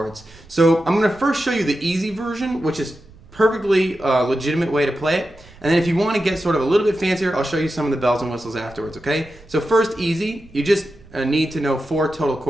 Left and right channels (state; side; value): noise; right; rumble, 23 dB below the sound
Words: So I'm going to first show you the easy version, which is perfectly legitimate way to play it. And then if you want to get sort of a little bit fancier, I'll show you some of the bells and whistles afterwards, okay? So first, easy. You just need to know 4 total